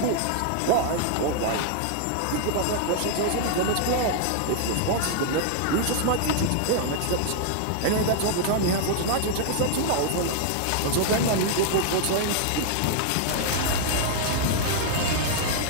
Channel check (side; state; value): both; different; correlation 0.00